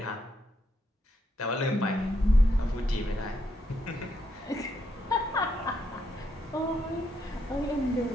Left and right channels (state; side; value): normal; both; correlation 0.78